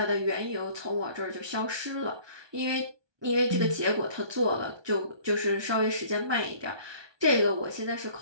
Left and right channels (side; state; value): left; late; 1.2 ms